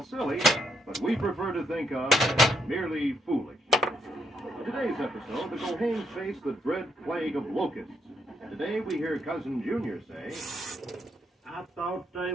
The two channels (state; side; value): normal; both; correlation 0.77